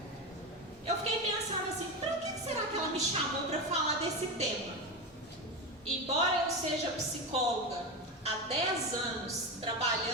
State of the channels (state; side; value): normal; both; correlation 0.18